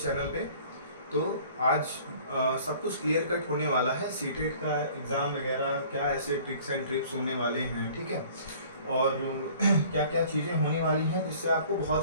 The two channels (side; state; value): both; inverted; correlation -0.51